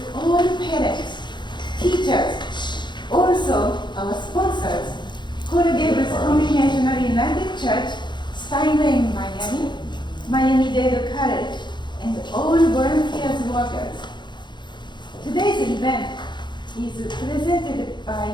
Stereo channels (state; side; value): late; right; 0.22 ms